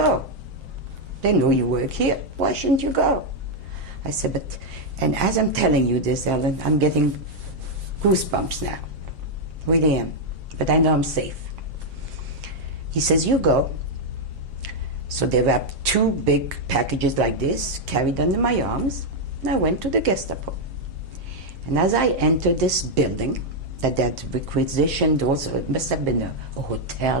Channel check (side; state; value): left; late; 7.5 ms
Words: They know you work here, why shouldn't you go? I said, but, and as I'm telling you this, Ellen, I'm getting goosebumps now. Really am. But I know I'm safe. He says, you go. So they wrapped 2 big packages like this, carried under my arms, and I went to the Gestapo. And as I entered this building, that had requisitioned also, it must have been a